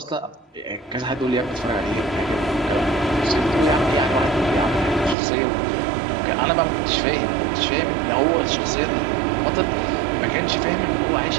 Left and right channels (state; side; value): drops out; left; at 5.2 s